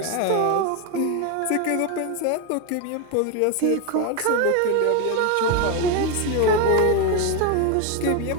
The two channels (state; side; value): different; both; correlation 0.02